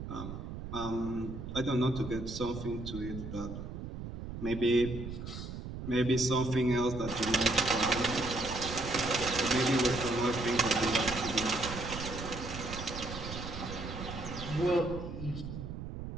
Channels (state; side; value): noise; right; rumble, 8 dB below the sound